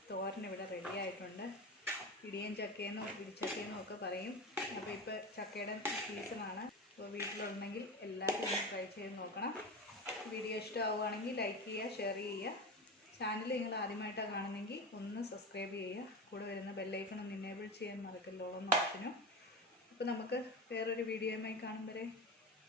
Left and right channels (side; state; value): both; normal; correlation 0.25